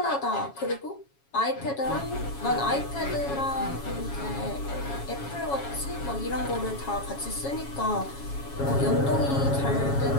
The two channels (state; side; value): late; right; 7.2 ms